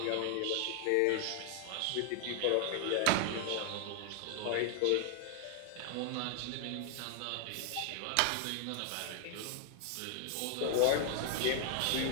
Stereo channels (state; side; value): different; both; correlation 0.00